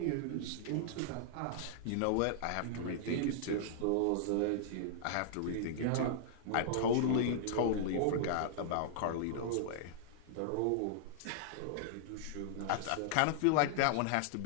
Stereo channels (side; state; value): both; different; correlation -0.01